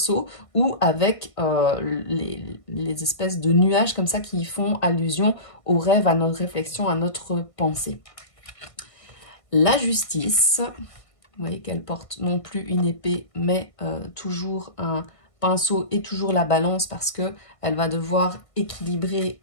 ou avec les espèces de nuages comme ça qui font allusion au rêve, à notre réflexion, à notre pensée. La justice. Vous voyez qu'elle porte non plus une épée, mais toujours un pinceau et toujours la balance parce qu'elle va devoir équilibrer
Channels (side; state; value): right; late; 1.5 ms